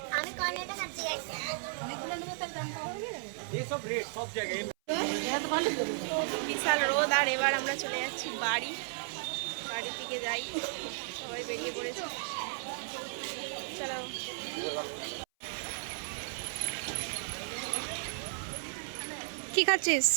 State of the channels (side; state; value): left; silent; 55 dB below the other